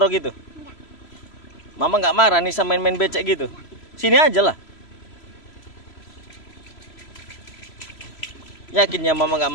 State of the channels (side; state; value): right; late; 3.0 ms